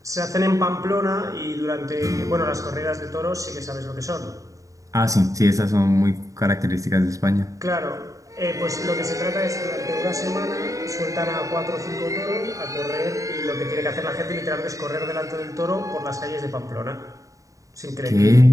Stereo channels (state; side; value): late; left; 0.16 ms